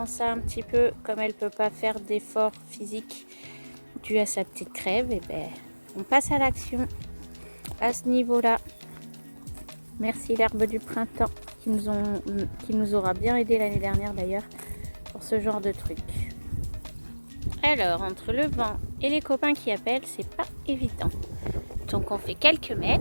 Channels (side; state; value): both; inverted; correlation -1.00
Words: ça un petit peu, comme elle peut pas faire d'effort physique dû à sa petite crève, et ben on passe à l'action à ce niveau-là. Merci l'herbe du printemps qui nous aura bien aidé l'année dernière d'ailleurs pour ce genre de truc. Alors, entre le vent et les copains qui appellent, c'est pas évident. Donc on fait quelques